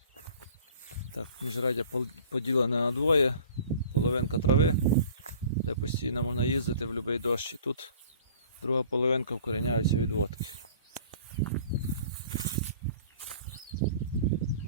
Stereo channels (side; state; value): both; inverted; correlation -0.48